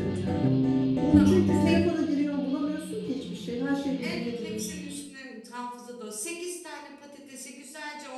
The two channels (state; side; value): identical; both; correlation 1.00